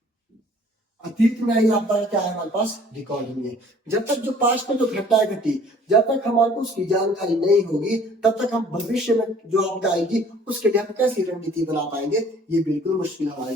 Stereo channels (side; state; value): both; normal; correlation 0.54